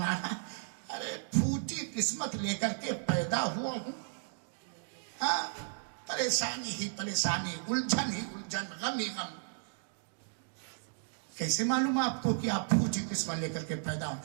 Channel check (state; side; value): silent; left; digital silence